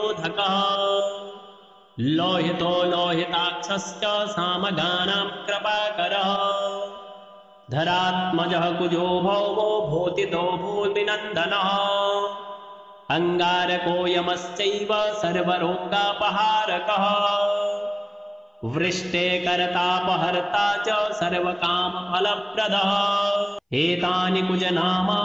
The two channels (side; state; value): both; identical; correlation 1.00